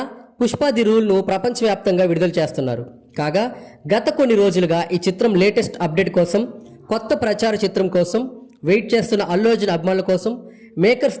పుష్ప ది రూల్ ను ప్రపంచవ్యాప్తంగా విడుదల చేస్తున్నారు. కాగా గత కొన్ని రోజులుగా ఈ చిత్రం లేటెస్ట్ అప్డేట్ కోసం, కొత్త ప్రచార చిత్రం కోసం వెయిట్ చేస్తున్న అల్లు అర్జున్ అభిమానుల కోసం మేకర్స్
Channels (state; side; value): identical; both; correlation 1.00